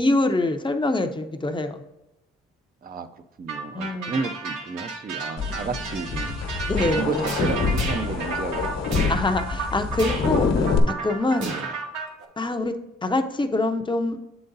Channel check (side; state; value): both; normal; correlation 0.63